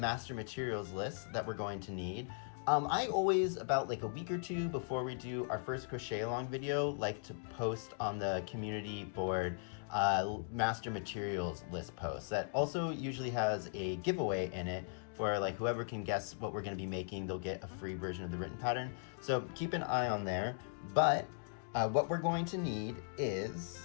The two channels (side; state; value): right; silent; digital silence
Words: materials list that we're going to need. I always, about like a week or two before we do our first crochet along video, like to post on the community board master materials list post that also usually has a giveaway in it for like whoever can guess what we're going to be making. They'll get a free version of the written pattern, so keep an eye on there. But what we're going to need